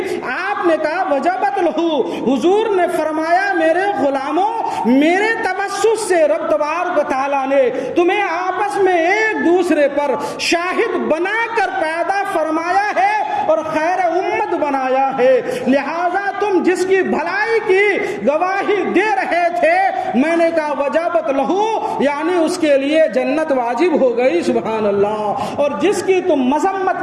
آپ نے کہا وجبت لہو، حضور نے فرمایا میرے غلاموں میرے تبسس سے رب تبارک و تعالیٰ نے تمہیں آپس میں ایک دوسرے پر شاہد بنا کر پیدا فرمایا ہے اور خیر امت بنایا ہے، لہذا تم جس کی بھلائی کی گواہی دے رہے تھے میں نے کہا وجبت لہو، یعنی اس کے لیے جنت واجب ہو گئی۔ سبحان اللہ، اور جس کی تم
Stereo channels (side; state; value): both; identical; correlation 1.00